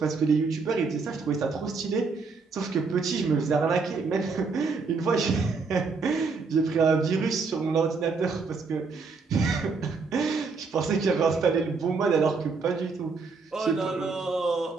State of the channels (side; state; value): left; quieter; 4.5 dB